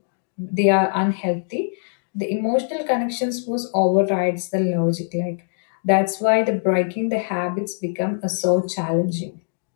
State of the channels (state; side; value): silent; right; digital silence